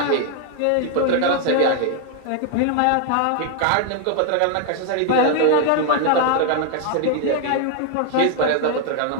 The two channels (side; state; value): both; different; correlation 0.00